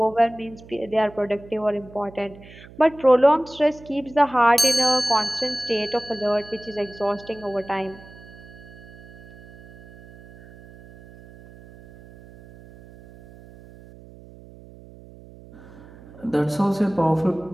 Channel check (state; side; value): noise; right; hum, 20 dB below the sound